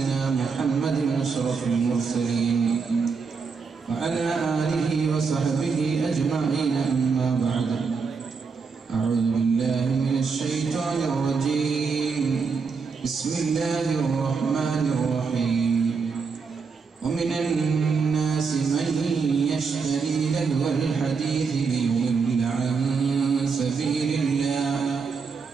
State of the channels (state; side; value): quieter; left; 5.2 dB